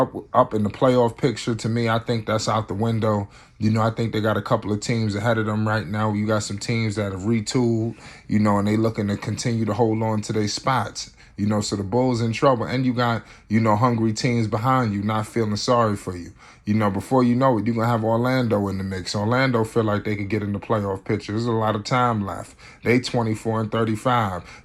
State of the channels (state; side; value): identical; both; correlation 1.00